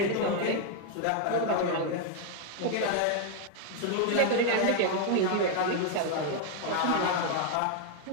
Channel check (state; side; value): different; both; correlation 0.00